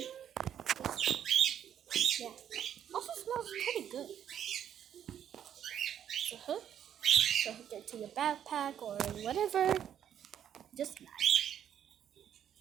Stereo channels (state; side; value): quieter; left; 9.7 dB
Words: yeah, also smells pretty good. So hook it to your backpack or whatever. Just nice.